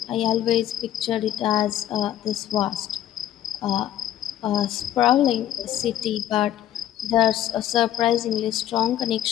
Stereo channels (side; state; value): right; quieter; 12.0 dB